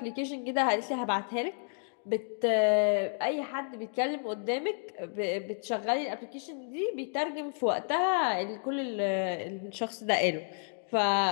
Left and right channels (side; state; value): right; silent; 57 dB below the other